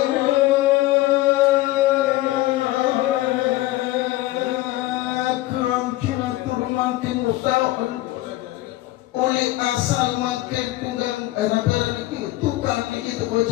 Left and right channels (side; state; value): right; quieter; 17.3 dB